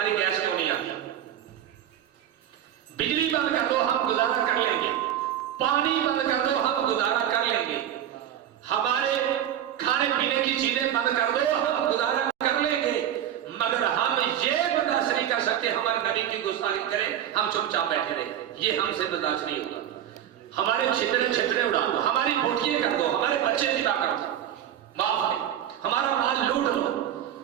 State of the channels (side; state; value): left; quieter; 10.6 dB